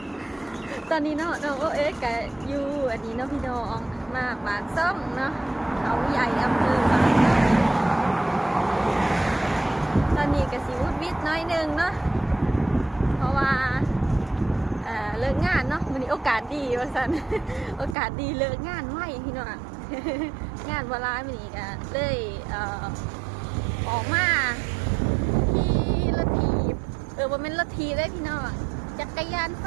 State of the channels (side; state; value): left; drops out; at 17.9 s